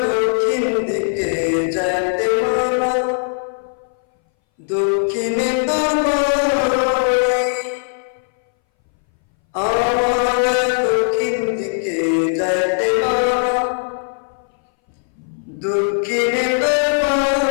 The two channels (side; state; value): right; silent; 62 dB below the other